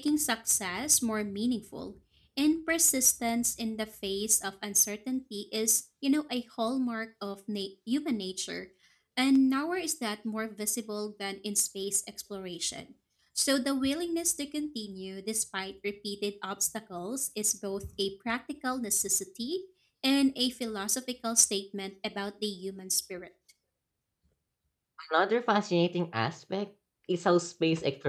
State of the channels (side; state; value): both; identical; correlation 1.00